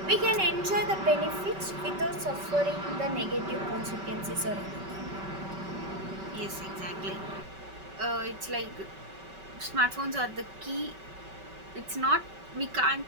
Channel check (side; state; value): left; late; 5.2 ms